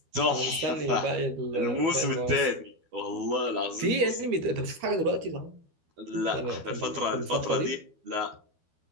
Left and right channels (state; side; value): late; left; 12 ms